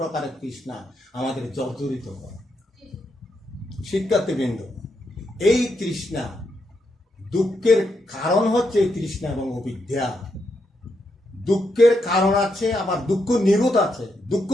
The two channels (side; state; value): both; normal; correlation 0.81